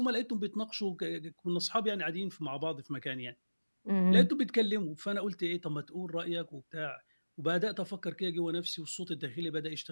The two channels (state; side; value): inverted; both; correlation -1.00